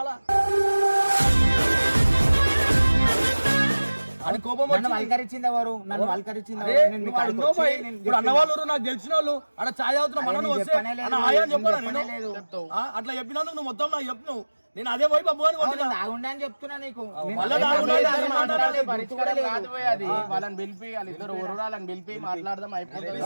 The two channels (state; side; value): inverted; both; correlation -1.00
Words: అని కోపం వల్కరించింది ఎవరు? నన్ను వల్కరించింది అన్నవాళ్ళు నాకు తెలిసిన వాళ్ళు అక్కడ ఛాయ్ అవుతున్నా మనం వస్తే అట్లా చెప్పినందుకు నువ్వు మొత్తం నాకు చెప్పు. నేను అదే పోయి బబ్బు అని అని చెప్తున్నా నీకు. వాళ్ళని పిలిపి వాళ్ళిద్దరు వాళ్ళని పిలిపి మాట్లాడదాం. అయిపోతుంది.